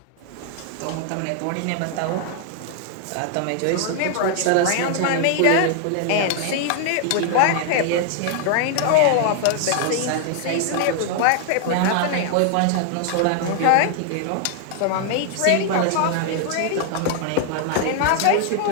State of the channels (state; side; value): different; both; correlation 0.00